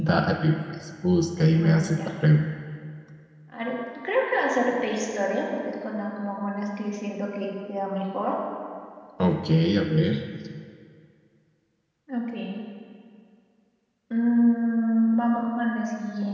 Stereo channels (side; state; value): both; identical; correlation 1.00